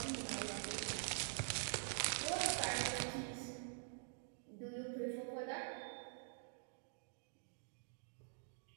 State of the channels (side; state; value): left; silent; digital silence